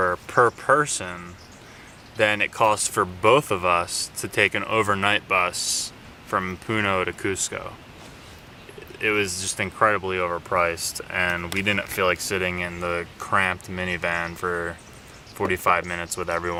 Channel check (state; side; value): identical; both; correlation 1.00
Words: per person than it cost for both of us to take an overnight bus from Puno to Cusco. It was just incredibly overpriced, and we didn't feel like sitting in the cramped minivan for 45 minutes with